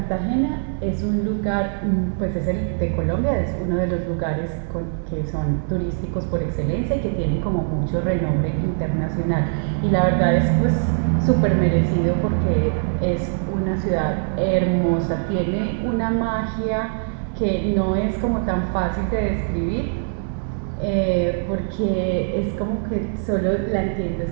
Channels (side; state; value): left; silent; 64 dB below the other